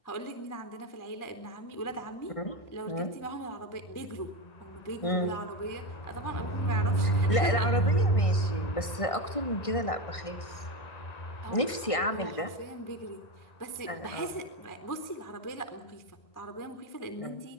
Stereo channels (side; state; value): right; late; 1.5 ms